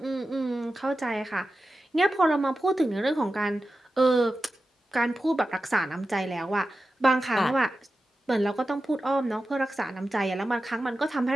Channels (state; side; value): normal; both; correlation 0.93